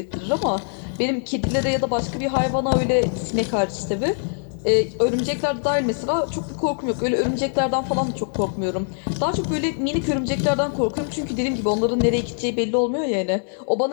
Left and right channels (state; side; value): silent; right; 64 dB below the other